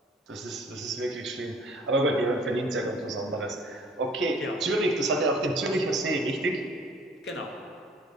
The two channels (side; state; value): both; normal; correlation 0.54